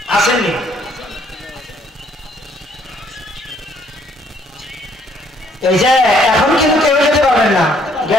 আসেননি? এই যে এখন কিন্তু কেউ যেতে পারবেন না,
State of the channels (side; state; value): both; normal; correlation 0.65